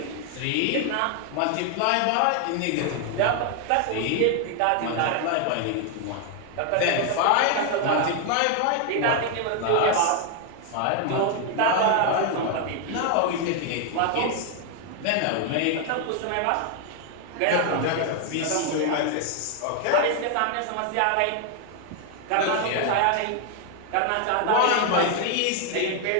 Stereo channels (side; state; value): both; different; correlation 0.00